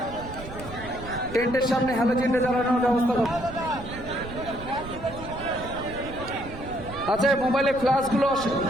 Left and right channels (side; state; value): right; noise; rumble, 12 dB below the sound